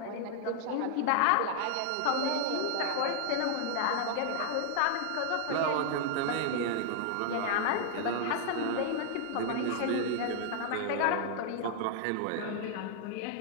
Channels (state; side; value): different; both; correlation 0.00